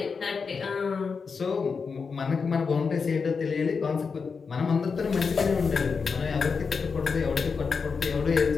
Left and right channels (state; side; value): quieter; right; 5.3 dB